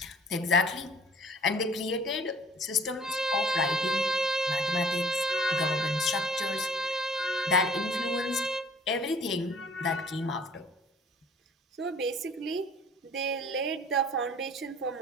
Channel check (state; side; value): normal; both; correlation 0.52